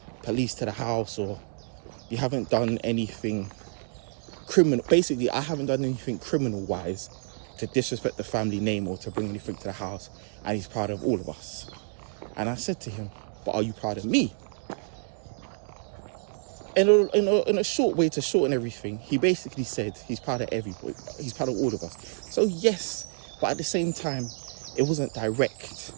police to the house, or you haven't done anything criminal." Basically, I haven't done anything criminal-wise to disrespect the family name or to bring anything to the house, and he's proud of all of us. And I said to him, "But are you proud of me?" In a short way to shorten everything, he basically said he's proud of everybody. He's proud of all of us. So yes, but at the same time, it wasn't direct.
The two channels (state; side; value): silent; left; digital silence